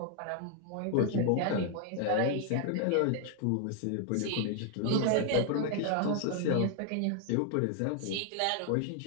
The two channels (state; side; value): different; both; correlation 0.00